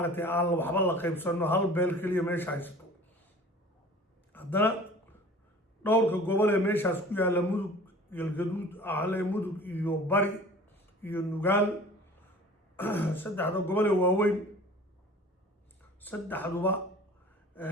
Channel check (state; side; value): normal; both; correlation 0.44